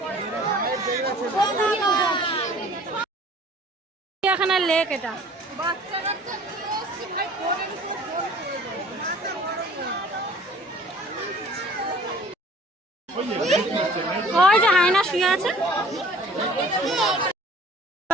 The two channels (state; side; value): normal; both; correlation 0.50